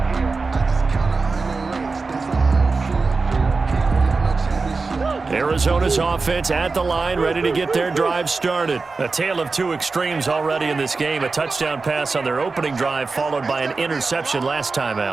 Arizona's offense at the line, ready to get their drive started. A tale of two extremes already in this game. A touchdown pass on their opening drive, followed by an interception last time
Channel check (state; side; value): quieter; left; 4.1 dB